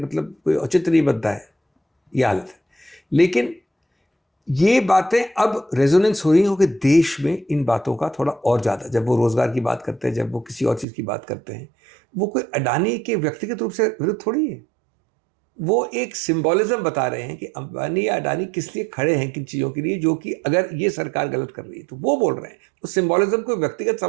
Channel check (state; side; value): drops out; left; at 10.9 s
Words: कोई औचित्य नहीं बनता है, ये हालत है। लेकिन ये बातें अब रेजोनेंस हो रही हो कि देश में इन बातों का थोड़ा और ज़्यादा, जब वो रोज़गार की बात करते हैं, जब वो किसी और चीज़ की बात करते हैं, वो कोई अडानी के व्यक्तिगत रूप से विरुद्ध थोड़ी है, वो एक सिंबॉलिज्म बता रहे हैं कि अंबानी या अडानी किस लिए खड़े हैं, किन चीज़ों के लिए, जो कि अगर ये सरकार गलत कर रही है तो वो बोल रहे हैं। उस सिंबॉलिज्म को व्यक्तिगत